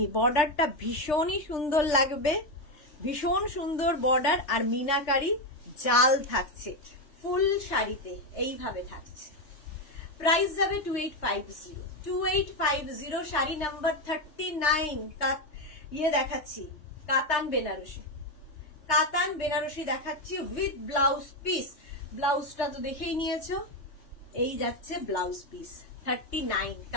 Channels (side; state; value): right; late; 3.3 ms